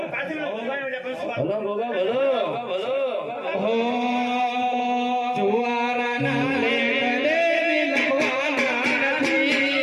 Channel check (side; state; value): both; identical; correlation 1.00